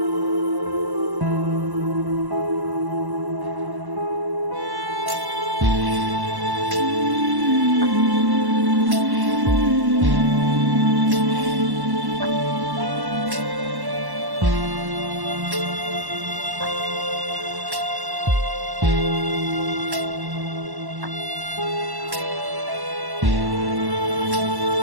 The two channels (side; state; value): left; late; 1.1 ms